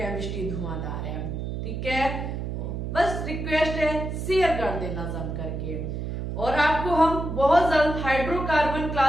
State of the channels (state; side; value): noise; right; hum, 4 dB below the sound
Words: धुआंधार है। ठीक है, बस रिक्वेस्ट है शेयर कर देना जम करके। और आपको हम बहुत जल्द हाइड्रोकार्बन